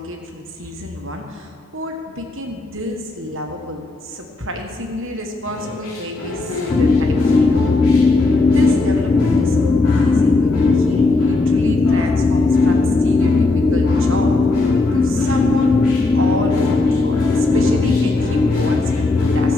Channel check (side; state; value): right; quieter; 3.2 dB